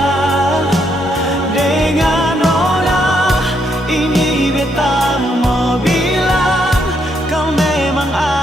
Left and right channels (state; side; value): normal; both; correlation 0.75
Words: Dengan nona ini beta mau bilang, kau memang